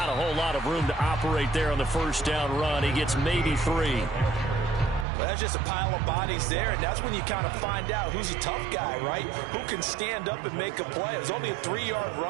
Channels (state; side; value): drops out; left; at 5.1 s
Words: a whole lot of room to operate there on the first down run. He gets maybe 3. Well, that's just a pile of bodies there, and that's when you kind of find out who's a tough guy, right? Who can stand up and make a play. It was only a 3-yard